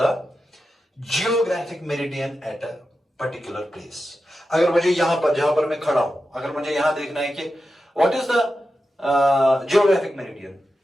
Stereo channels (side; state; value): both; normal; correlation 0.91